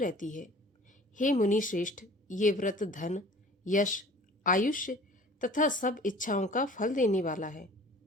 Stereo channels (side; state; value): both; normal; correlation 0.47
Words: है। हे मुनि श्रेष्ठ, ये व्रत धन, यश, आयुष्य तथा सब इच्छाओं का फल देने वाला है।